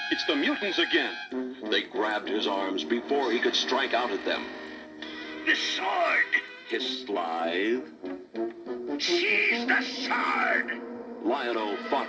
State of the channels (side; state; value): both; identical; correlation 1.00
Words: It's the mutants again. They grabbed his arms before he could strike out at them. The sword! Hissed Slythe. Seize the sword! Lionel fought